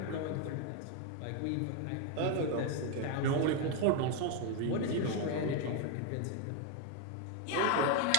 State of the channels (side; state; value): both; different; correlation 0.01